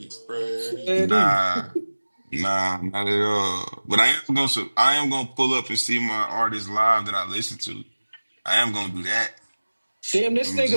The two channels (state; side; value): inverted; both; correlation -1.00